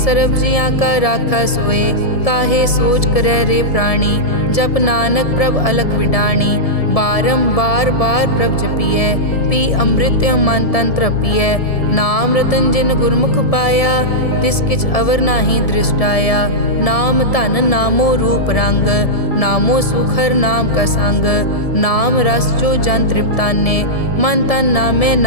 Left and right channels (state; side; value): late; right; 1.7 ms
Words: सर्ब जियां का राखा सोए, काहे सोच करे रे प्राणी, जप नानक प्रभ अलख विडाणी, बारंबार बार प्रभ जपिए, पी अमृत मन तन तृपिए, नाम रतन जिन गुरमुख पाया, तिस किछ अवर नाही दृष्टाया, नाम धन नामो रूप रंग, नामो सुखर नाम का संग, नाम रस जो जन तृप्ताने, मन तन नामे